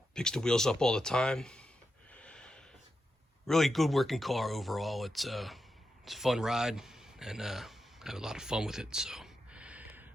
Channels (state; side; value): normal; both; correlation 0.87